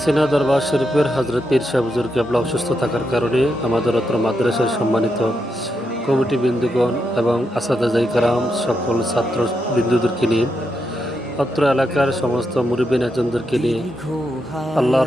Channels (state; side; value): normal; both; correlation 0.83